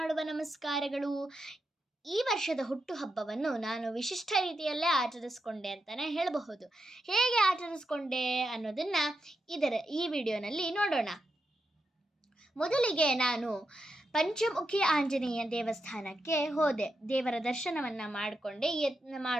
ನಮಸ್ಕಾರಗಳು. ಈ ವರ್ಷದ ಹುಟ್ಟುಹಬ್ಬವನ್ನು ನಾನು ವಿಶಿಷ್ಟ ರೀತಿಯಲ್ಲೇ ಆಚರಿಸ್ಕೊಂಡೆ ಅಂತಲೇ ಹೇಳಬಹುದು. ಹೇಗೆ ಆಚರಿಸ್ಕೊಂಡೆ ಅನ್ನೋದನ್ನು ಈ ವಿಡಿಯೋನಲ್ಲಿ ನೋಡೋಣ. ಮೊದಲಿಗೆ ನಾನು ಪಂಚಮುಖಿ ಆಂಜನೇಯ ದೇವಸ್ಥಾನಕ್ಕೆ ಹೋದೆ. ದೇವರ ದರ್ಶನವನ್ನು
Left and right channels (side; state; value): both; normal; correlation 0.85